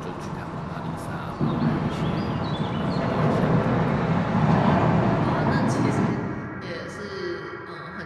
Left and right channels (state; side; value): identical; both; correlation 1.00